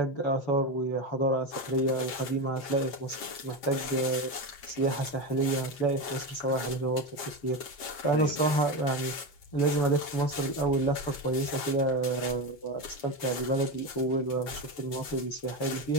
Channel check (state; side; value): late; right; 7.5 ms